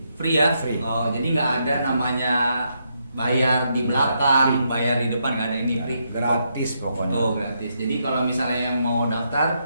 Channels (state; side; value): inverted; both; correlation -0.79